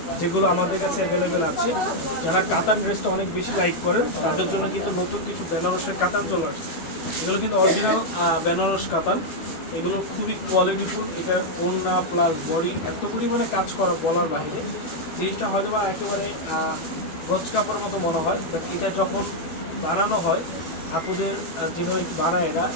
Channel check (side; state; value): right; late; 12 ms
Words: যেগুলো আমাদের কাছে অ্যাভেলেবেল আছে। যারা কাতান ড্রেসটা অনেক বেশি লাইক করেন তাদের জন্য কিন্তু নতুন কিছু বেনারসের কাতান চলে আসছে। এগুলো কিন্তু অরিজিনাল বেনারস কাতান। এগুলো খুবই কোয়ালিটিফুল। এটা ওড়না প্লাস বডি এত পরিমাণে কাজ করা বলার বাইরে। জিনিসটা হয়তো বা একেবারে গজ কাপড়ের মতো মনে হয়, বাট এটা যখন বানানো হয় আপুদের যেভাবে বানায় এরা